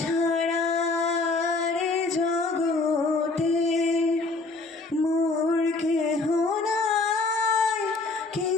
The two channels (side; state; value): right; quieter; 3.6 dB